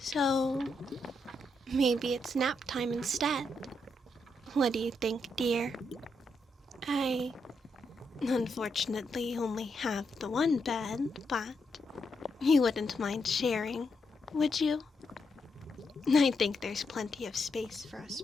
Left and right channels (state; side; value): normal; both; correlation 0.81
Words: maybe it's nap time instead. What do you think, dear? I unfortunately only have the one bed, but you wouldn't mind sharing, would you? I think there's plenty of space for us